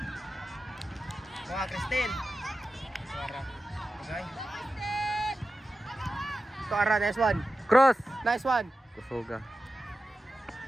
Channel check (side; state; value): both; normal; correlation 0.93